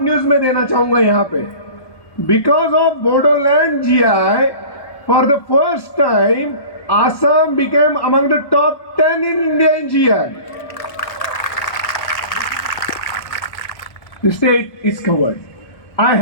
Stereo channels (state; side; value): late; right; 1.2 ms